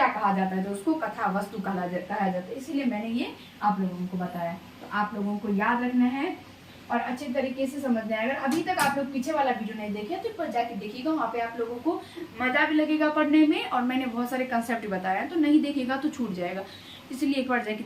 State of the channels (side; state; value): both; identical; correlation 1.00